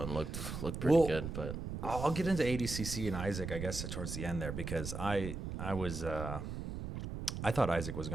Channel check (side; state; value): right; noise; rumble, 5 dB below the sound